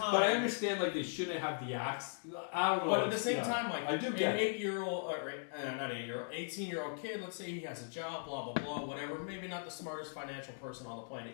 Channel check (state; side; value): silent; right; digital silence